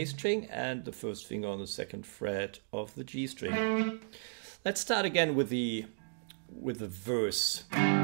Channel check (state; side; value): silent; left; digital silence